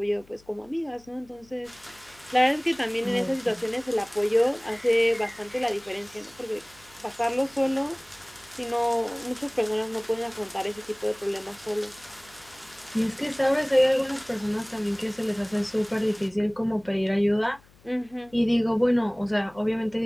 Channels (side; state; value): left; noise; hum, 28 dB below the sound